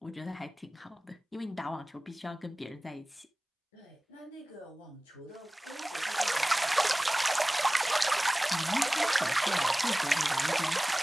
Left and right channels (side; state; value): both; normal; correlation 0.98